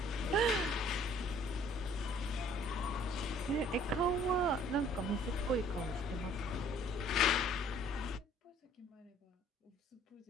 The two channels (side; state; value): both; normal; correlation 0.57